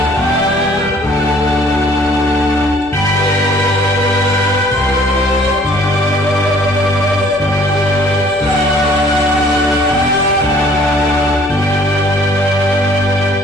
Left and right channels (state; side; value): noise; left; hum, 19 dB below the sound